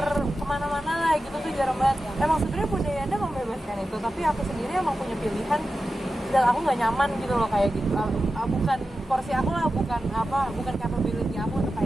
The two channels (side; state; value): both; normal; correlation 0.92